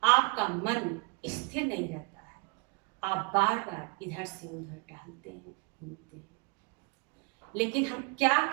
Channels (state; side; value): quieter; left; 31.0 dB